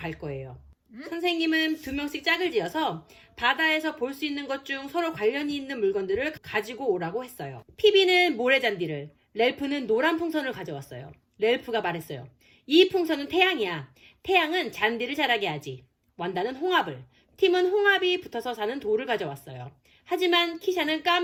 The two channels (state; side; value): identical; both; correlation 1.00